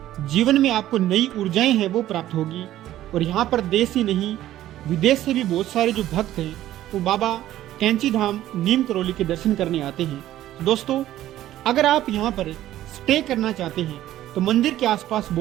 जीवन में आपको नई ऊर्जाएं हैं वो प्राप्त होगी। और यहाँ पर देश ही नहीं विदेश से भी बहुत सारे जो भक्त हैं वो बाबा कैंची धाम नीम करोली के दर्शन करने आते हैं। तो दोस्तों अगर आप यहाँ पर स्टे करना चाहते हैं तो मंदिर के आसपास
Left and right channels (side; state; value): left; quieter; 13.5 dB